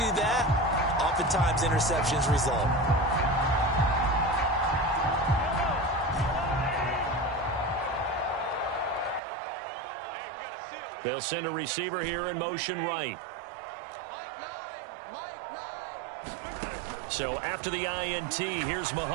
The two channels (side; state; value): left; drops out; at 9.2 s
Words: that, oftentimes interceptions result. They'll send a receiver here in motion right. So after the INT, here's